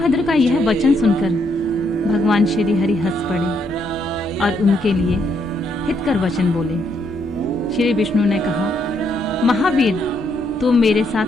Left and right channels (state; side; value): normal; both; correlation 0.74